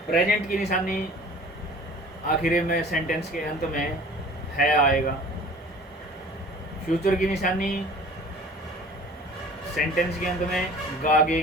प्रेजेंट की निशानी आखिर में सेंटेंस के अंत में है आएगा। फ्यूचर की निशानी सेंटेंस के अंत में गागे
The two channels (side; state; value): both; normal; correlation 0.46